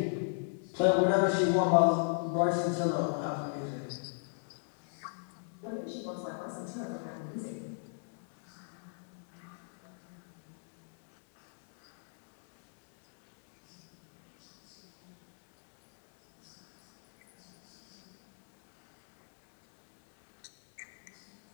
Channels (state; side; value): silent; right; digital silence